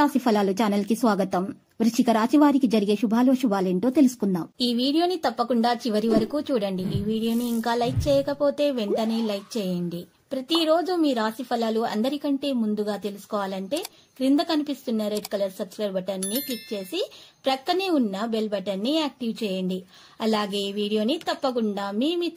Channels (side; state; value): both; identical; correlation 1.00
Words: ఫలాలు ఛానల్ కి స్వాగతం. వృశ్చిక రాశి వారికి జరిగే శుభాలేంటో తెలుసుకుందాం. ఈ వీడియోని తప్పకుండా చివరి వరకు చూడండి. ఈ వీడియోని ఇంకా లైక్ చేయకపోతే వెంటనే లైక్ చేయండి. ప్రతిరోజు మీ రాశి ఫలాలు అందరికంటే ముందుగా తెలుసుకోవాలంటే క్రింద కనిపిస్తున్న రెడ్ కలర్ సబ్స్క్రైబ్ బటన్ ని క్లిక్ చేసి ప్రక్కనే ఉన్న బెల్ బటన్ ని యాక్టివ్ చేయండి. అలాగే ఈ వీడియోని తప్పకుండా మీ